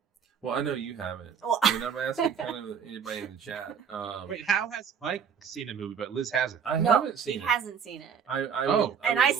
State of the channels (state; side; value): quieter; left; 7.2 dB